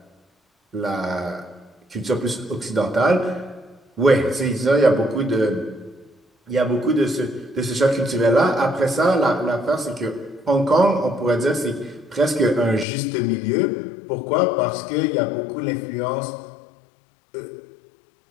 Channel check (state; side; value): drops out; right; at 12.9 s